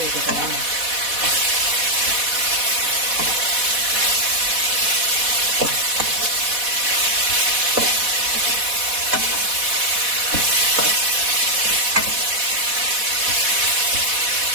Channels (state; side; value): late; left; 4.1 ms